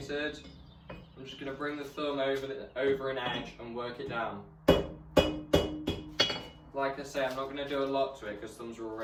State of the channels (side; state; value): both; identical; correlation 1.00